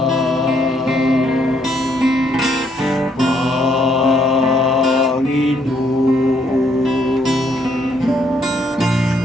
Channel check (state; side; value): normal; both; correlation 0.70